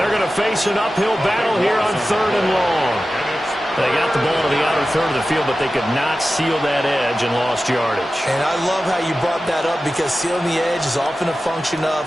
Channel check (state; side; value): normal; both; correlation 0.94